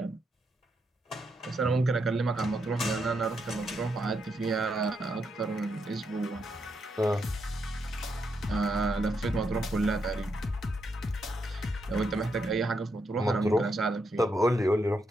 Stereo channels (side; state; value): both; normal; correlation 0.80